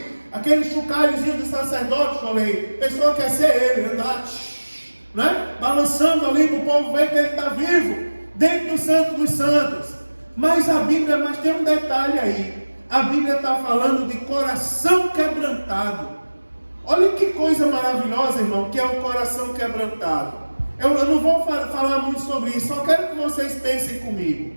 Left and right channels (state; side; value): inverted; both; correlation -1.00